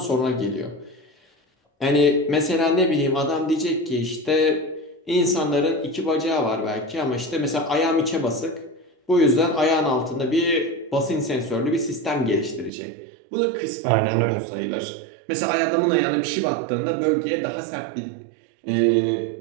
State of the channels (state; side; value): drops out; left; at 12.7 s